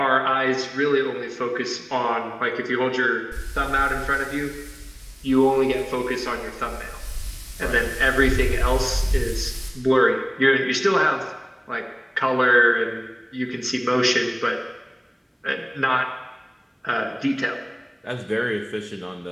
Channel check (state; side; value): identical; both; correlation 1.00